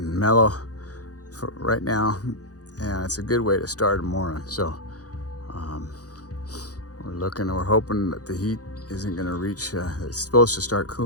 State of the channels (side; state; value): right; late; 0.67 ms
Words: mellow for right now, and it's a good way to start a morning. So we're hoping that the heat isn't going to reach. It's supposed to start